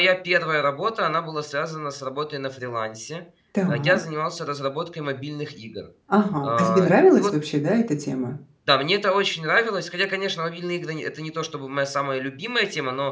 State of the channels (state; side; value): identical; both; correlation 1.00